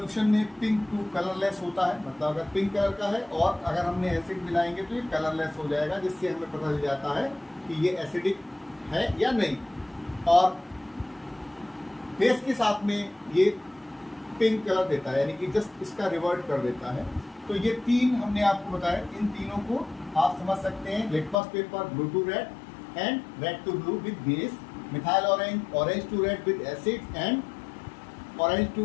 में पिंक टू कलरलेस होता है, मतलब अगर पिंक कलर का है और अगर हमने एसिड मिलाएंगे तो ये कलरलेस हो जाएगा, जिससे हमें पता चल जाता है कि ये एसिडिक है या नहीं। और बेस के साथ में ये पिंक कलर देता है, यानी कि जस्ट इसका रिवर्ट कर देता है। तो ये 3 हमने आपको बताया, इन तीनों को आप समझ सकते हैं। Litmus paper blue to red and red to blue with base, methyl orange orange to red with acid and orange to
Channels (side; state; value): right; drops out; at 21.4 s